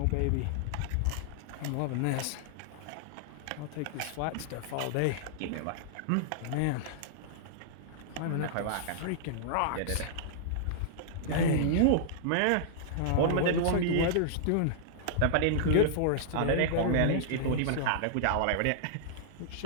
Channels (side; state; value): both; different; correlation -0.01